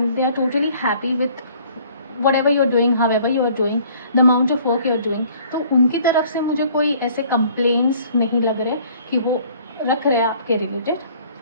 they are totally happy with whatever you're doing, however you are doing, the amount of work you're doing। तो उनकी तरफ से मुझे कोई ऐसे कंप्लेंट्स नहीं लग रहे कि वो रख रहे हैं आपके रिलेटेड।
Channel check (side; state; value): both; inverted; correlation -0.56